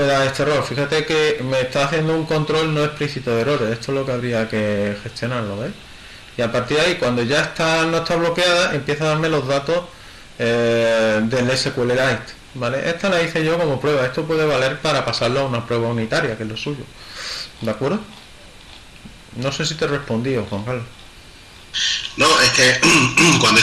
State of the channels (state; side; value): identical; both; correlation 1.00